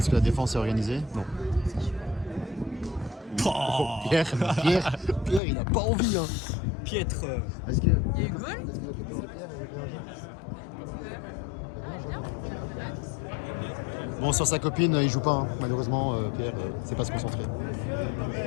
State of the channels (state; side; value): drops out; right; at 5.4 s